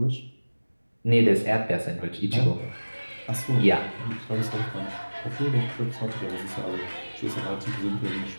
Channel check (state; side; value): inverted; both; correlation -1.00